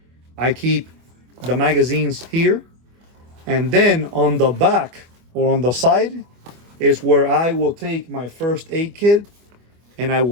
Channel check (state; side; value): late; left; 25 ms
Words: I keep the magazines here. And then on the back or on the side is where I will take my first aid kit and I